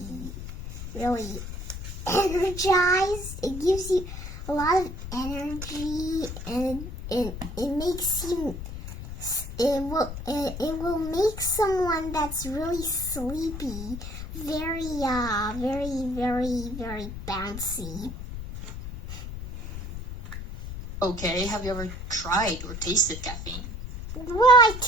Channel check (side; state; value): left; noise; rumble, 8 dB below the sound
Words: really energized. It gives you a lot of energy, and it makes you. It will make someone that's really sleepy very bouncy. Okay, have you ever tried or tasted caffeine? Well, I